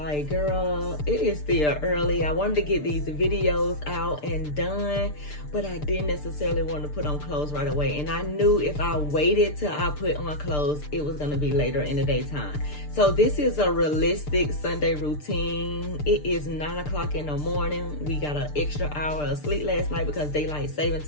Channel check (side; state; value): right; late; 6.7 ms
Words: girl, it is still early. I wanted to get these videos out and done, but I didn't necessarily want to put on clothes right away. And I knew if I waited till I put on clothes, it was going to be later in the daytime. So this is a realistic Sunday routine. It is 9 o'clock in the morning. We got an extra hour of sleep last night because daylight saving